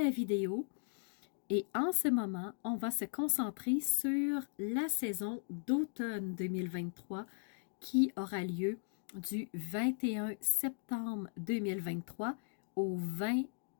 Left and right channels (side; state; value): right; silent; digital silence